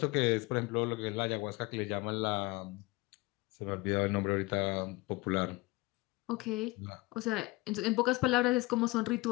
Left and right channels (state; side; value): quieter; right; 21.8 dB